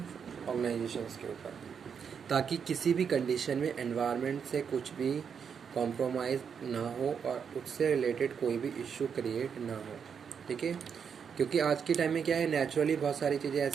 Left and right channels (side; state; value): left; quieter; 6.9 dB